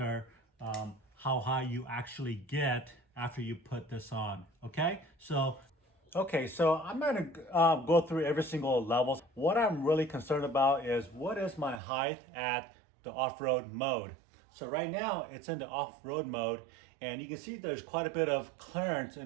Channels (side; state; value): left; drops out; at 11.8 s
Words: how high you actually get after you put this on. Okay, so I'm going to go through every single level. What I'm really concerned about is what is my height at the off-road mode. So right now it's in the off-road mode, and you can see there's quite a bit of clearance